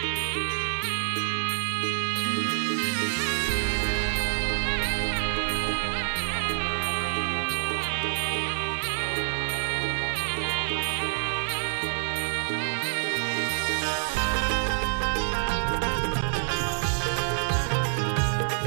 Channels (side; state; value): left; silent; digital silence